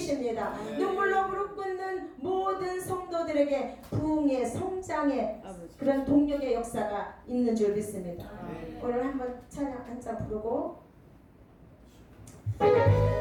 눈물로 무릎 꿇는 모든 성도들에게 부흥의 성장의 그런 동력의 역사가 있는 줄 믿습니다. 오늘 한번 찬양 한 잔 부르고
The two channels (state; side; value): identical; both; correlation 1.00